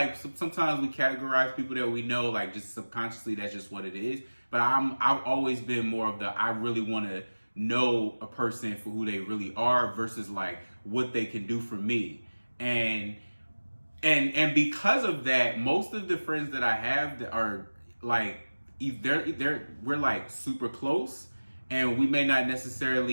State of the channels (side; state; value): both; inverted; correlation -1.00